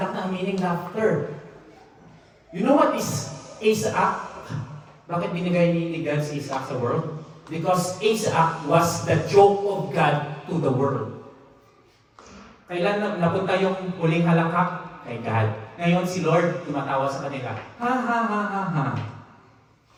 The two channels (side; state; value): both; identical; correlation 1.00